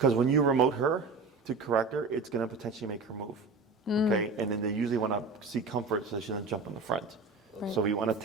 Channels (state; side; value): quieter; left; 4.0 dB